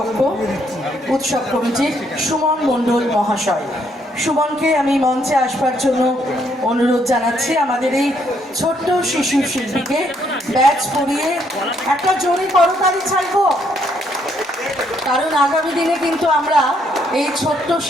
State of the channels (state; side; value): normal; both; correlation 0.71